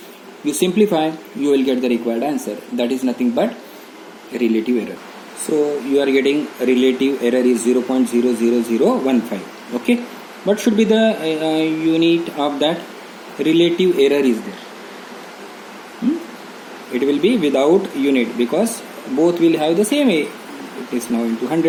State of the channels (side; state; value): both; identical; correlation 1.00